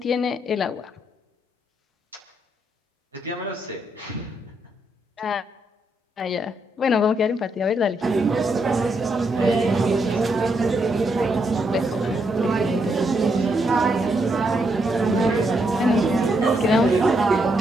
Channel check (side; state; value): both; normal; correlation 0.78